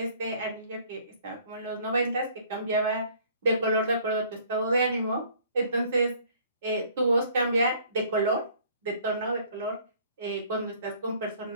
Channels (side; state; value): both; inverted; correlation -0.57